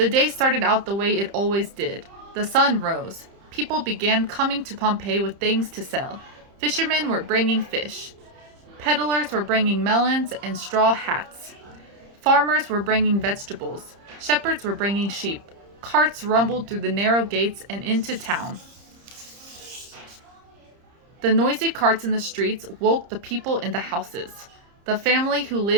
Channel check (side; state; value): left; late; 30 ms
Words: day started out the way it always did. The sun rose. People began coming to Pompeii with things to sell. Fishermen were bringing fish. Peddlers were bringing melons and straw hats. Farmers were bringing vegetables. Shepherds were bringing sheep. Carts rumbled through the narrow gates and into town. The noisy carts in the streets woke the people in the houses. The family who